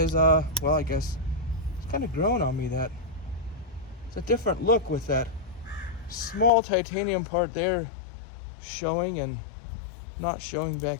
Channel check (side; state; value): right; drops out; at 6.5 s